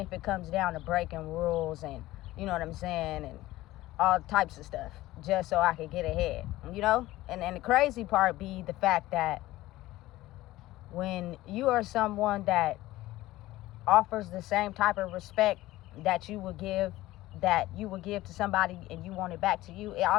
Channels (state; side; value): quieter; right; 16.9 dB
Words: it comes down to breaking rules and, you know what I'm saying, and all types of stuff, just so I could get ahead, you know? And the crazy part be the fact that when you are someone that offers the same type of respect that you would give to somebody and you want it back to you, it